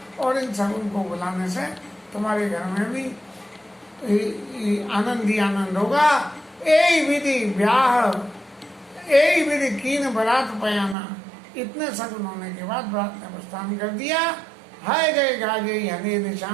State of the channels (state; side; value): drops out; left; at 11.0 s